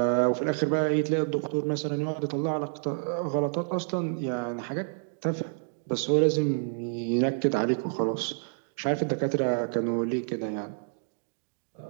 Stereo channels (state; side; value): silent; left; digital silence